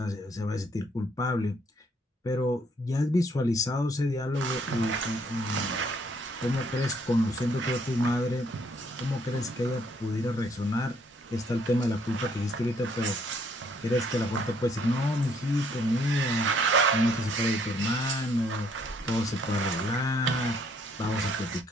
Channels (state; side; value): normal; both; correlation 0.67